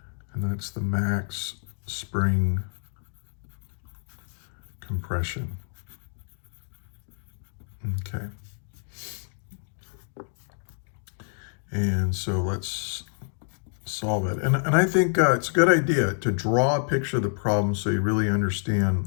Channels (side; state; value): right; silent; digital silence